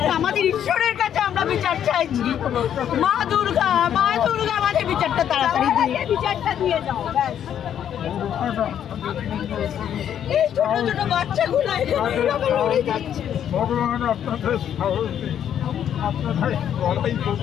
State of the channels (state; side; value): quieter; right; 9.6 dB